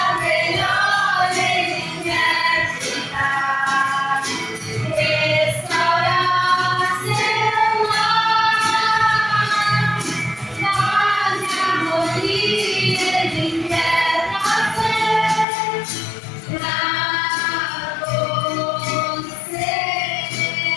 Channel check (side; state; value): right; drops out; at 15.5 s